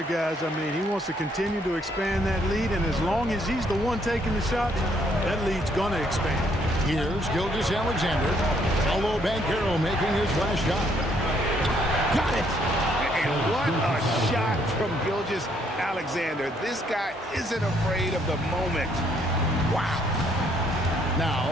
guys. I mean, he wants to continue to expand that lead, and as long as he's the one taking the shots, that lead's going to expand. Here's Gilgeous-Alexander. Paolo Banchero making his last shot. Got it! And what a shot from Gilgeous-Alexander. This guy isn't afraid of the moment. Wow.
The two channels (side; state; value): both; normal; correlation 0.69